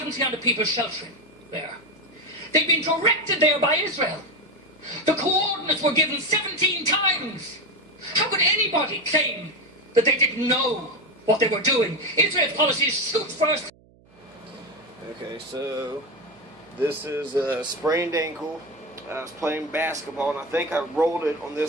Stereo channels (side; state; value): right; noise; hum, 29 dB below the sound